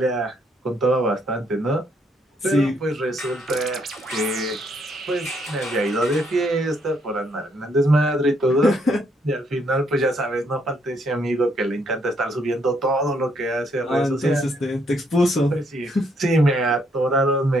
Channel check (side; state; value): both; normal; correlation 0.72